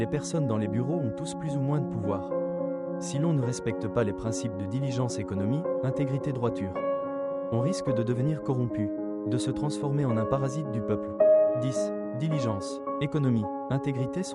personnes dans les bureaux ont tous plus ou moins de pouvoir. Si l'on ne respecte pas les principes de diligence, économie, intégrité, droiture, on risque de devenir corrompu, de se transformer en un parasite du peuple. 10. Diligence, économie, intégrité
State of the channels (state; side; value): identical; both; correlation 1.00